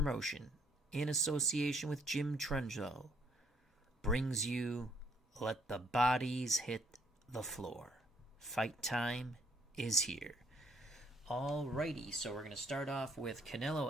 in association with Jim Trunzo, brings you Let the Bodies Hit the Floor. Fight time is here. Alrighty, so we're going to start off with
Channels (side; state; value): both; normal; correlation 0.66